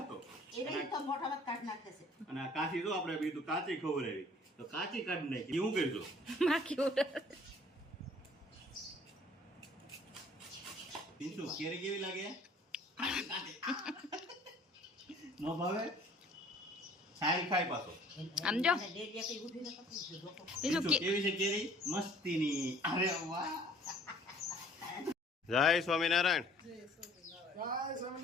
એને તો મોઢામાં કાઢી નાખે છે. અને આ કાચી જો આપણે બીજું કાચી ખવડાવી તો કાચી કાઢી નાખી. હું કરજો માખી ઉડે. પિન્ટુ કેરી કેવી લાગે? નો ભાવે? સારી ખાય પાછો. આમ જો. અને ડેડિયા કઈ ઉઠીને પકડી છે જોકો. બીજું પિન્ટુ કેવી છે કેરી? મસ્તીની. અરે વાહ. જય સ્વામિનારાયણ. જય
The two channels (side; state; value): both; normal; correlation 0.53